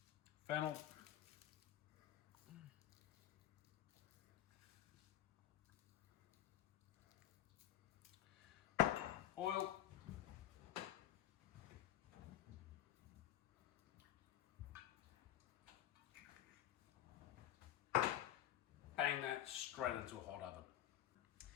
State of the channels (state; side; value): quieter; right; 12.1 dB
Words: Fennel. Oil. Bang that straight into a hot oven.